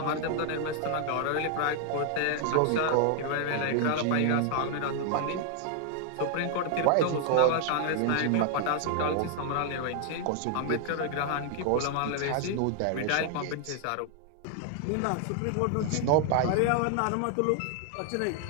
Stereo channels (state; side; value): different; both; correlation 0.00